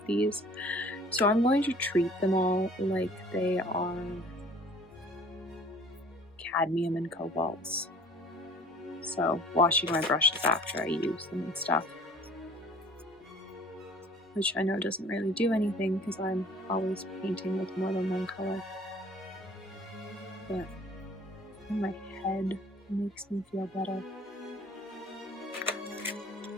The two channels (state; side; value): normal; both; correlation 0.51